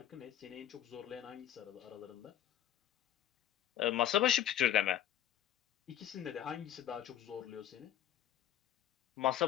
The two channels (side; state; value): right; quieter; 11.2 dB